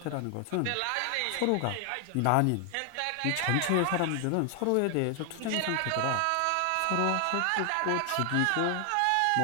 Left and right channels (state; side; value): different; both; correlation 0.00